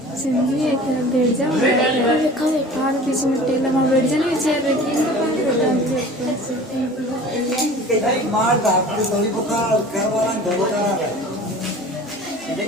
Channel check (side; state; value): both; normal; correlation 0.42